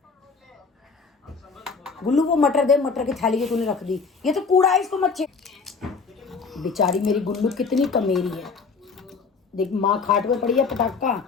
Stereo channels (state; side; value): quieter; right; 4.9 dB